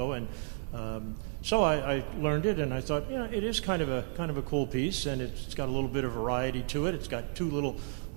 And so I learned it, and I thought, it is kind of a cool piece, and it's got a little bit of variety to it. It's got two little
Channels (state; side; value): silent; left; 56 dB below the other